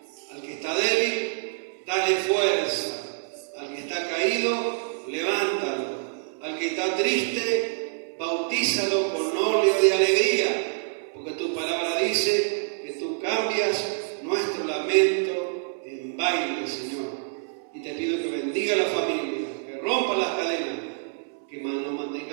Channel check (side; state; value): left; silent; 61 dB below the other